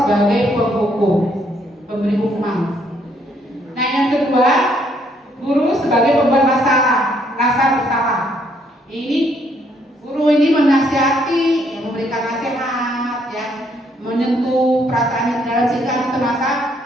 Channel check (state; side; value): normal; both; correlation 0.69